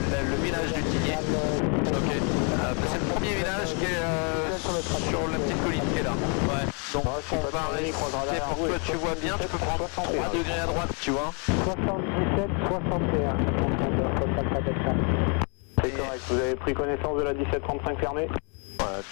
village du Tigné. Ok. C'est le premier village qui est sur la petite colline qui est là. Ouais. Donc on va rester pour que tu vois bien, tu peux prendre 3 degrés à droite, tu vois. 77, 61. C'est correct, vous avez pris connaissance de la 1735 fermée? Ouais,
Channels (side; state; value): right; quieter; 37.9 dB